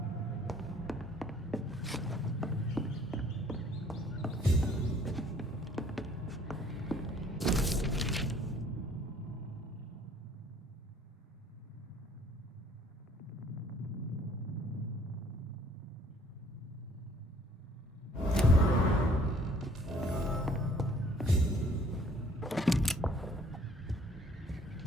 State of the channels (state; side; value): normal; both; correlation 0.58